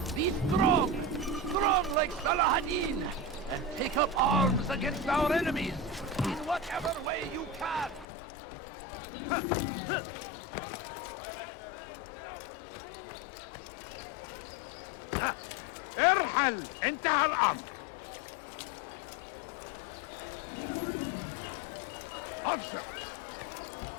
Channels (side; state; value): right; drops out; at 8.1 s